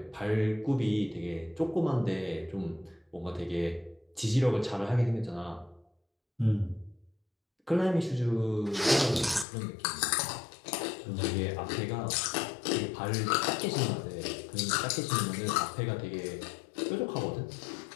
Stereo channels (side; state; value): right; drops out; at 9.5 s